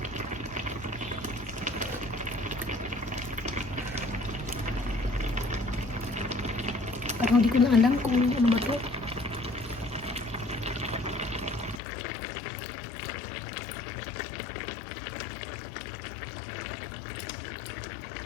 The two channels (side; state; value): right; drops out; at 11.8 s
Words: Parang hindi ko na alam kung ano ba to.